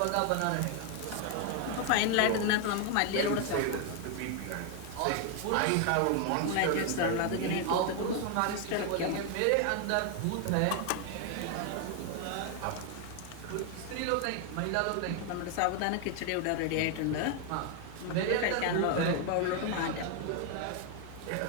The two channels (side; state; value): both; different; correlation 0.01